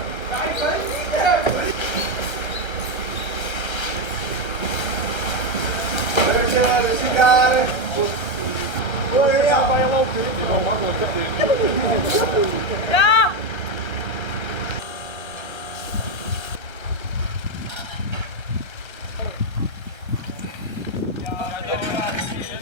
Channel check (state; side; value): late; right; 1.3 ms